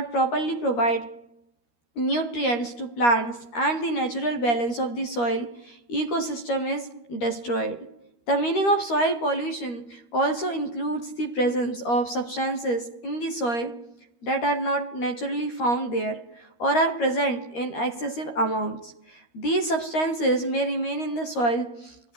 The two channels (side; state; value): right; late; 13 ms